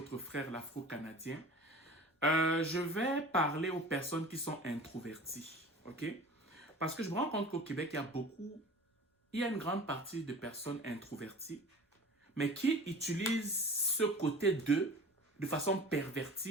frère l'Afro-Canadien. Je vais parler aux personnes qui sont introverties, ok? Parce que je me rends compte qu'au Québec, il y a une grande partie de personnes introverties, mais qui utilisent ce côté d'eux de façon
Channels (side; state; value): both; normal; correlation 0.40